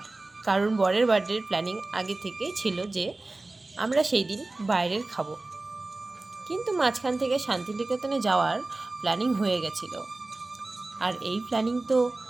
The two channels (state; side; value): quieter; left; 3.1 dB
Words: কারণ বরের বার্থডের প্ল্যানিং আগে থেকেই ছিল যে আমরা সেই দিন বাইরের খাবো। কিন্তু মাঝখান থেকে শান্তিনিকেতনে যাওয়ার প্ল্যানিং হয়ে গেছিল, আর এই প্ল্যানিং তো